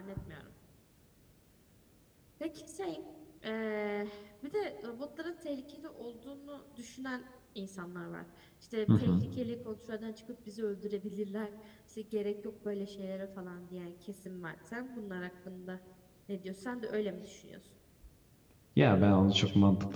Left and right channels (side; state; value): both; identical; correlation 1.00